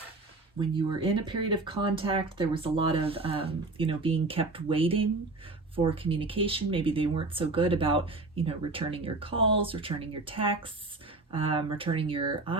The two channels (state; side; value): quieter; left; 3.2 dB